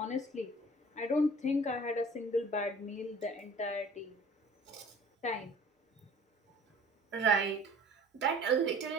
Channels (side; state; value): both; normal; correlation 0.48